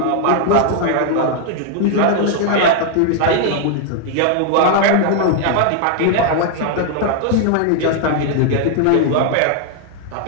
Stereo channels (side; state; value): both; different; correlation 0.00